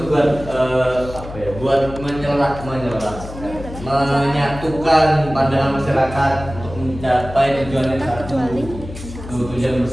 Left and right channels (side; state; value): left; noise; hum, 12 dB below the sound